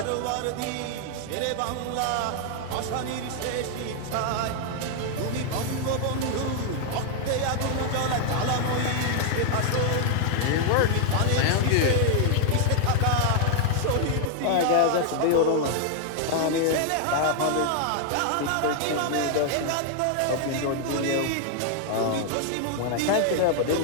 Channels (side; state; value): both; different; correlation 0.00